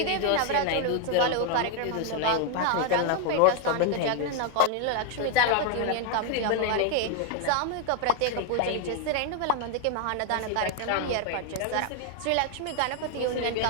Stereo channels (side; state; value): both; different; correlation 0.01